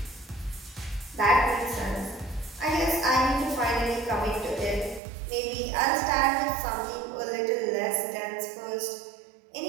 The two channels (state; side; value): drops out; left; at 5.0 s